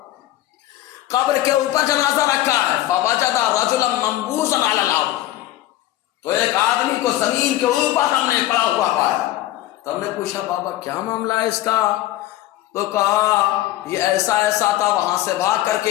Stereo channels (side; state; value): right; quieter; 14.8 dB